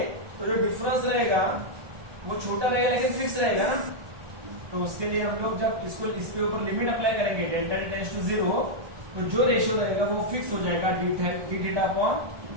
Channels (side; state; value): left; late; 1.2 ms